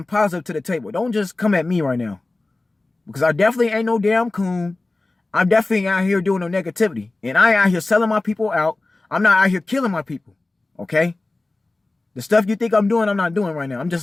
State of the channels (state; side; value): quieter; right; 3.1 dB